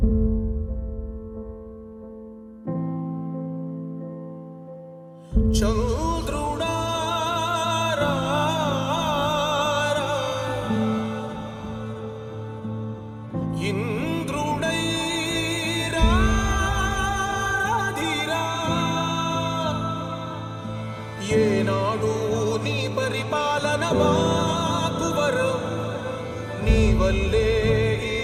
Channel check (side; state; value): both; identical; correlation 1.00